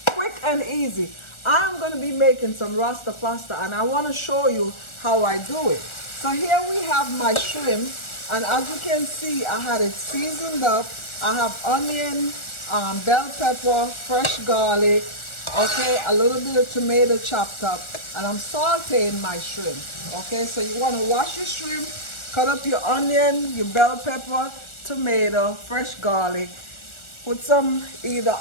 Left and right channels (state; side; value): late; right; 1.4 ms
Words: quick and easy. I'm going to be making some Rasta pasta and I want to show you how I do it. So here we have my shrimp, and as you can see, I had it seasoned up. I have onion, bell pepper, fresh garlic, okay, a little bit of tomato chopped up, and I'm sauteing my shrimp. Okay, so you want to wash your shrimp, cut up your onion, your bell pepper, tomato, fresh garlic, put some either